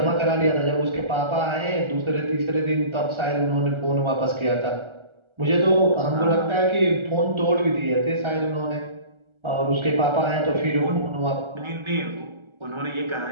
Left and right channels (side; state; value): left; late; 1.3 ms